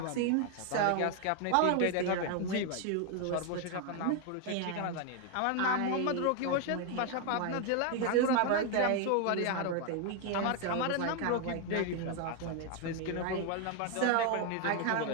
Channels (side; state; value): both; different; correlation 0.01